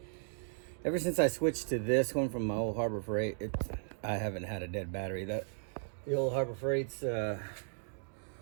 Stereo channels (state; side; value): silent; left; digital silence